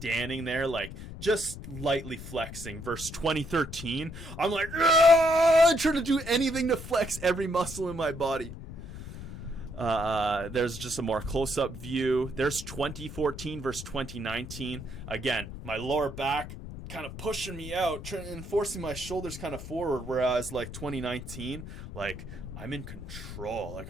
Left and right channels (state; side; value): noise; left; rumble, 11 dB below the sound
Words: there like just lightly flexing versus 2013. I'm like, I'm trying to do anything to flex every muscle in my body. There's just a more close-up view. There's 2014 versus 2019. Again, my lower back kind of pushing me out and forcing my shoulders kind of forward, whereas like 2019, like, I'm in control, like,